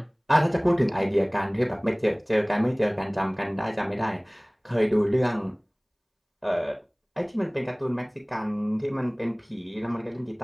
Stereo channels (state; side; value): identical; both; correlation 1.00